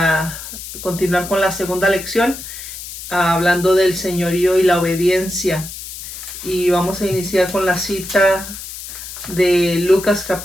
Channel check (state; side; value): noise; left; hiss, 11 dB below the sound